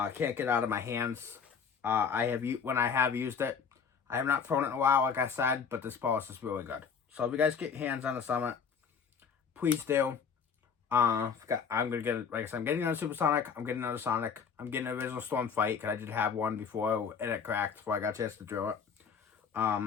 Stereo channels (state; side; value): quieter; right; 6.4 dB